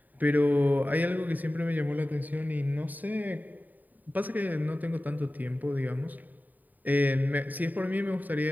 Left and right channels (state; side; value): late; left; 0.084 ms